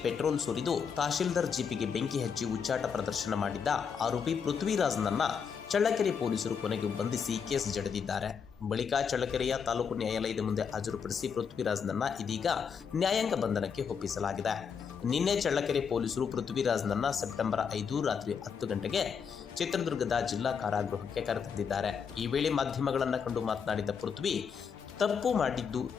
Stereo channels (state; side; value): quieter; right; 6.6 dB